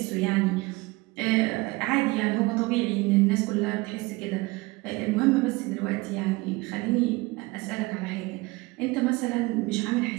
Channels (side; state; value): left; quieter; 23.2 dB